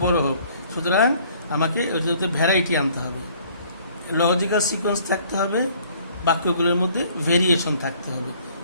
বড় হোক। সুতরাং আমাকে ওইটাতে ভ্যারাইটি আনতে হবে, লজিক্যাল সিকোয়েন্স থাকতে হবে, বাক্যগুলোর মধ্যে ভেরিয়েশন থাকতে হবে,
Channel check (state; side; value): inverted; both; correlation -0.58